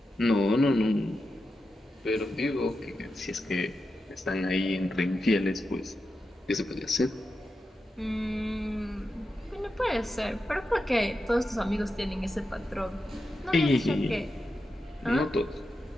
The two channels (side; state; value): both; normal; correlation 0.89